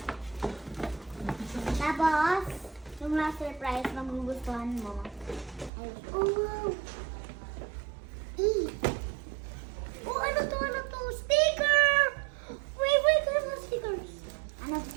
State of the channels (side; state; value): left; drops out; at 5.7 s